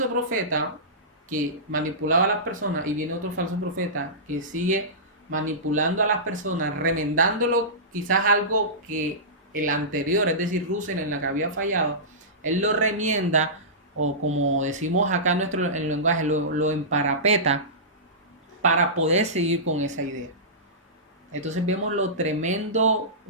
profeta que manipulaba a las personas y viene otro falso profeta que sigue manipulando a las personas, remendándolo quizás algo que el anterior, es decir, Russell, en la que había fallado, él lo remienda, o como decimos acá en el lenguaje, lo emparapeta para poder seguir con esa idea. Entonces vemos lo tremendo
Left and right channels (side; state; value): both; normal; correlation -0.19